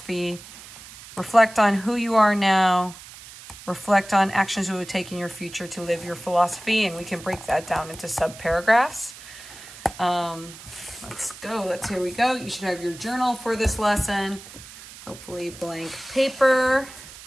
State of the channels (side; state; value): right; noise; hiss, 17 dB below the sound